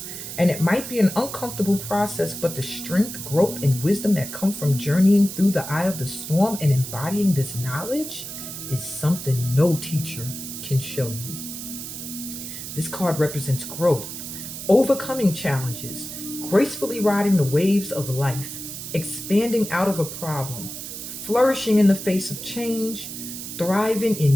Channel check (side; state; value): right; noise; hiss, 9 dB below the sound